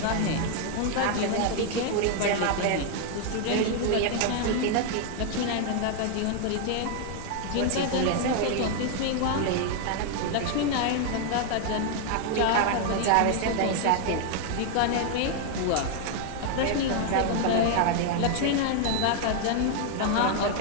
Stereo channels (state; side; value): different; both; correlation 0.00